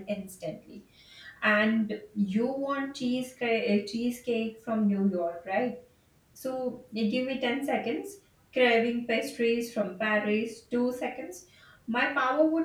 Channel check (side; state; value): both; identical; correlation 1.00